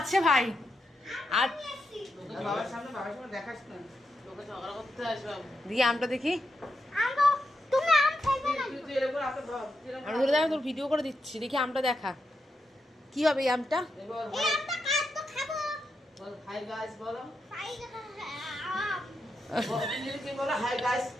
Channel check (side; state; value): both; normal; correlation 0.84